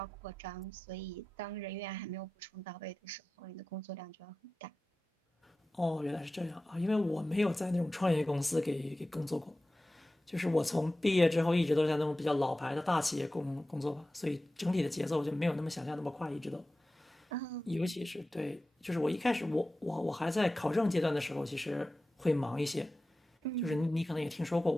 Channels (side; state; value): both; normal; correlation 0.95